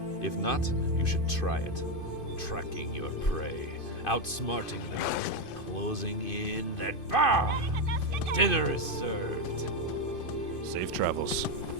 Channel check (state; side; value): late; right; 2.5 ms